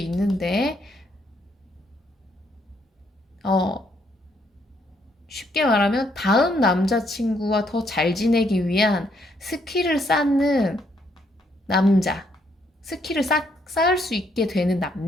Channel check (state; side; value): normal; both; correlation 0.72